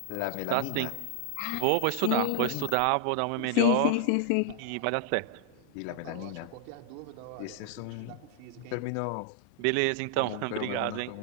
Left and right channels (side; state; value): both; different; correlation 0.00